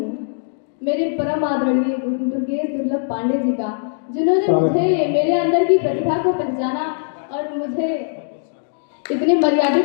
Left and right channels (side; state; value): right; silent; digital silence